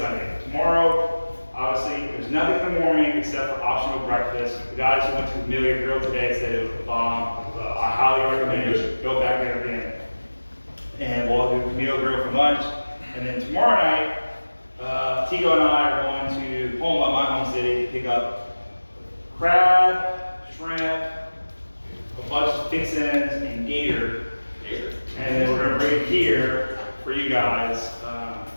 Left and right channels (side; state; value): both; inverted; correlation -1.00